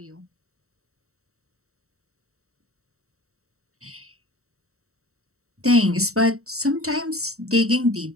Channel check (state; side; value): late; left; 0.64 ms